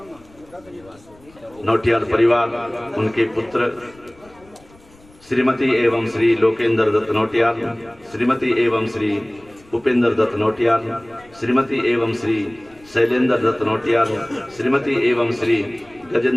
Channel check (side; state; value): left; noise; rumble, 27 dB below the sound